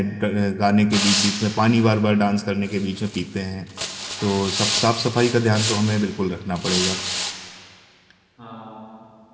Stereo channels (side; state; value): both; identical; correlation 1.00